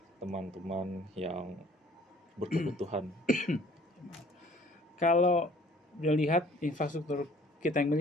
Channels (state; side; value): normal; both; correlation 0.54